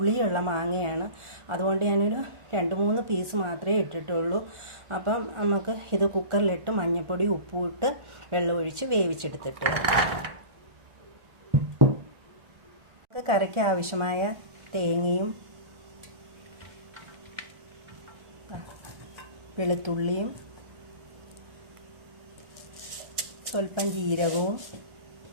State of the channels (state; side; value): late; left; 1.4 ms